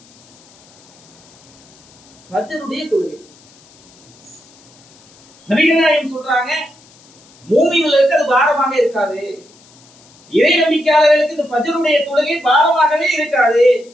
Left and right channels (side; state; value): left; noise; hiss, 27 dB below the sound